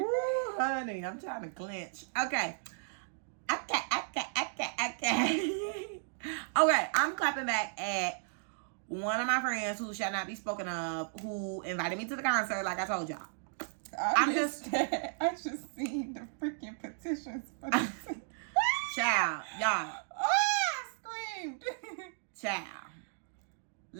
honey, I'm trying to clench. Okay. Okay, I'm clapping back at one of my friends who shall not be spoken of, who invited me to the concert, like I told y'all. I just seen the freaking petitions for this. Child, y'all. I screamed. Child.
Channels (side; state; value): left; silent; digital silence